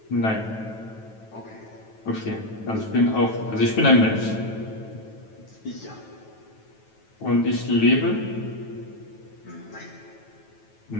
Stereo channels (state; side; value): late; right; 9.2 ms